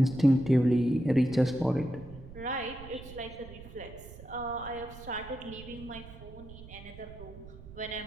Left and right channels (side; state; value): right; noise; rumble, 16 dB below the sound